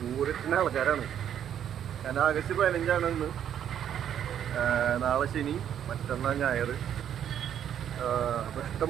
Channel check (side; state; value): left; quieter; 9.6 dB